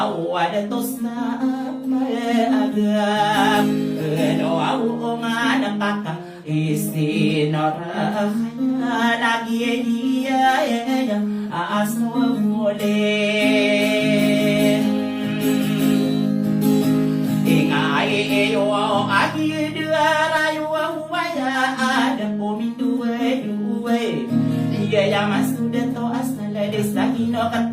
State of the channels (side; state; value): both; identical; correlation 1.00